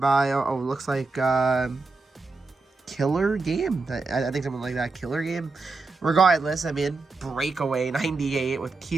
Oh, it looks like Killer Game. I think something like that, Killer Game. Regardless, I mean, Breakaway 98 with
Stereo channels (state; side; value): quieter; left; 3.7 dB